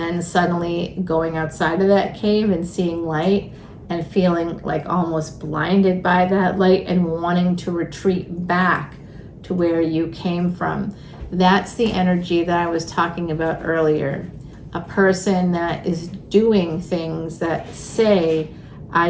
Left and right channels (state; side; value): identical; both; correlation 1.00